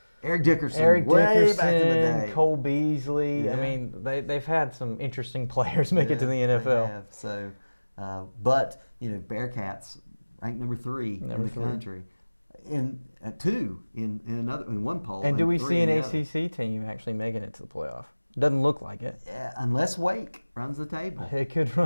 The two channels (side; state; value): both; inverted; correlation -1.00